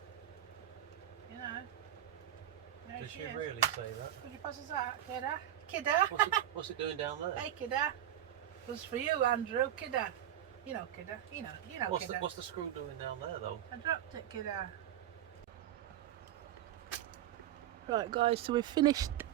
You know. There Did she she is. really say that? Could you pass us that, kidda? Kidda? What's it doing down there? Hey, kidda. It was for you, Andrew. Kidda. You know, kidda. You know, kidda. What's the screw doing down there, though? I dropped it, kidda. Right, guys, so we've finished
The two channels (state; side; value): quieter; left; 11.5 dB